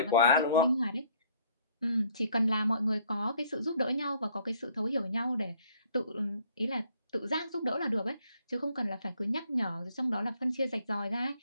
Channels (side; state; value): both; inverted; correlation -0.62